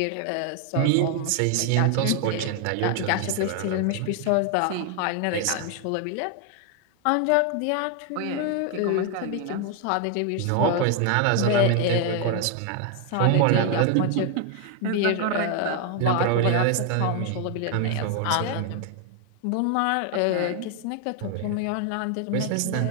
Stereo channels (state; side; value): different; both; correlation 0.01